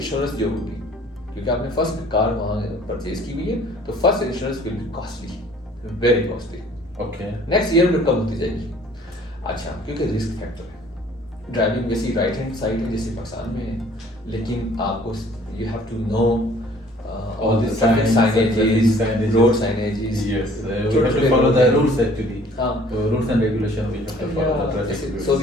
جو ہوگی, کیونکہ آپ نے فرسٹ کار وہاں پرچیز کی ہوئی ہے, تو first insurance will be costly, very costly. Okay, next year میں کم ہوتی جائے گی. اچھا, کیونکہ رسک فیکٹر ہے. ڈرائیونگ ویسی رائٹ ہینڈ سائڈ ہے جیسے پاکستان میں ہے, لیکن آپ کو you have to know all the signages, road signages. Yes, we have to follow the rules actually. Rules and regulation we have to follow the traffic rules.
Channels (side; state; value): both; normal; correlation 0.55